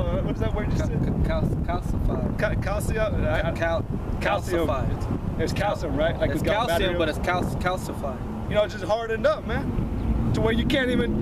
is that word you said? Calcified. Calcium. It's calcium, right? Like it's calcium, but it's calcified. You know, it's just hardened up, man. To where you can't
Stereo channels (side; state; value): both; identical; correlation 1.00